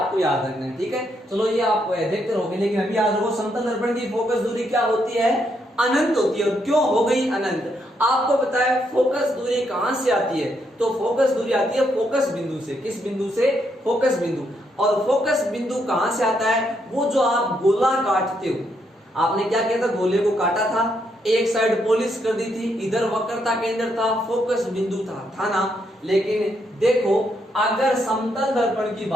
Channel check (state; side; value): normal; both; correlation 0.77